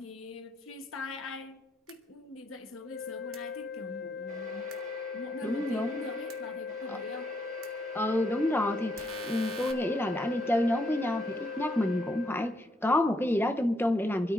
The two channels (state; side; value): normal; both; correlation 0.75